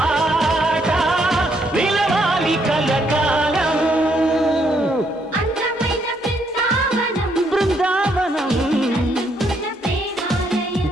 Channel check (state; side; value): normal; both; correlation 0.73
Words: నిలవాలి కలకాలం. బృందావనం